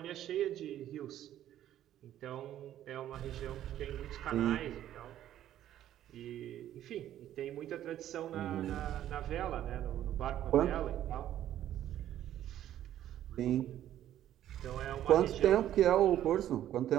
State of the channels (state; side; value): quieter; left; 12.0 dB